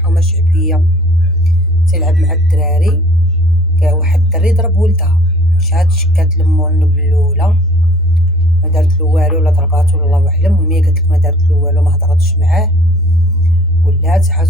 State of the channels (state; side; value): noise; left; rumble, 25 dB below the sound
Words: شعبيه، تيلعب مع الدراري. كان واحد الدري ضرب ولدها، شكات لمو النبل الاولى، ما دارت له والو، ولا ضرباتو ولا الله اعلم. المهم هي قالت لك ما دارت له والو، ما هضرتش معاه، ولات